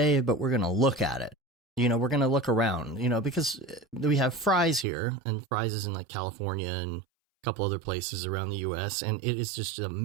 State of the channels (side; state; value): left; drops out; at 4.9 s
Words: but we're going to look at it. We're going to look around, because we have Fry's here, and Fry's is in like California and a couple other places around the US, and it is just a